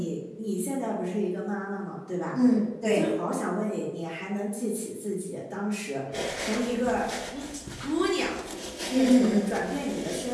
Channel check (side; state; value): both; identical; correlation 1.00